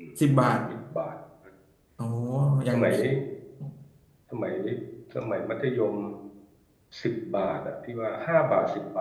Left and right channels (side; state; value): both; identical; correlation 1.00